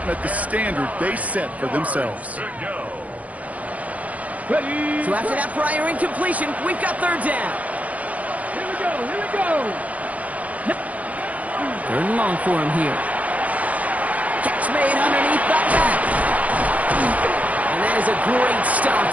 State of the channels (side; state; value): left; late; 0.070 ms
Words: met the standard they set for themselves. Ready? So after that prior incompletion, we've got 3rd down. Here we go, here we go! 3rd and long for him here. Catch made underneath the back. And that is a great stop